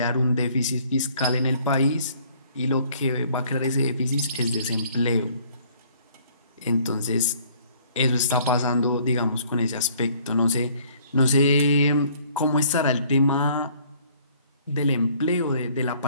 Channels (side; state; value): both; inverted; correlation -0.59